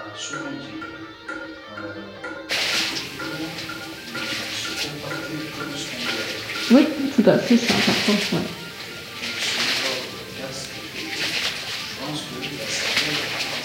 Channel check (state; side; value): identical; both; correlation 1.00